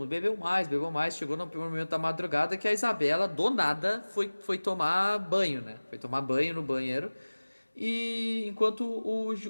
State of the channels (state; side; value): inverted; both; correlation -1.00